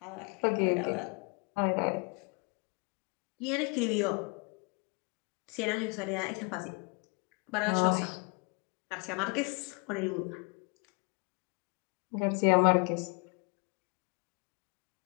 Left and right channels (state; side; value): quieter; right; 34.1 dB